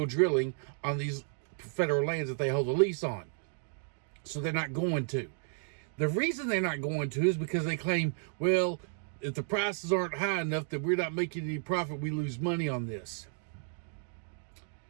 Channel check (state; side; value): silent; left; 56 dB below the other